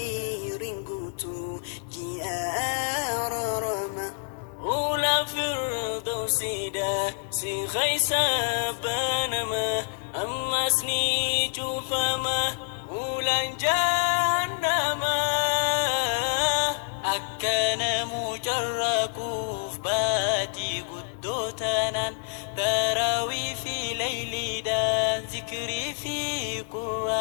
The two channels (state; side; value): silent; right; digital silence